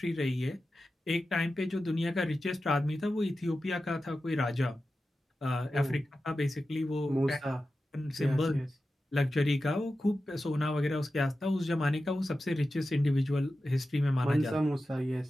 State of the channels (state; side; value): normal; both; correlation 0.93